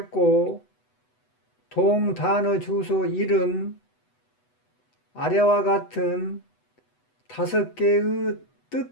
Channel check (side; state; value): right; late; 8.0 ms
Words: 동 단어 주소 1은 아래와 같은 5개의